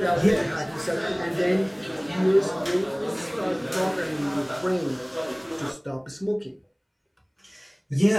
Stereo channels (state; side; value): identical; both; correlation 1.00